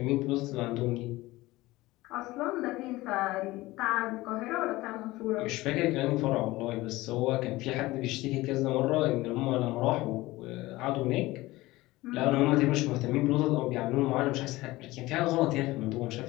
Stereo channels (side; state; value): right; quieter; 19.1 dB